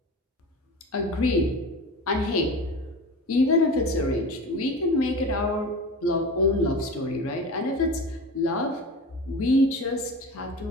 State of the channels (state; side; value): normal; both; correlation 0.32